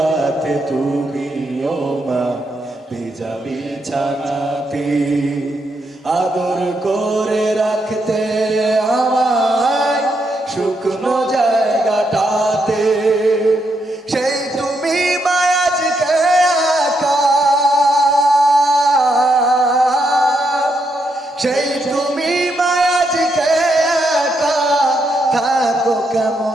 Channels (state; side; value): normal; both; correlation 0.79